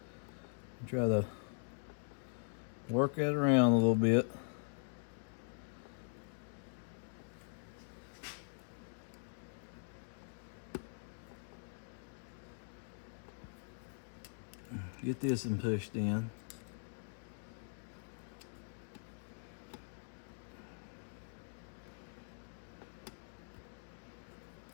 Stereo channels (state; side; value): silent; right; digital silence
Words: Try to work that around a little bit. Get this and pushed in.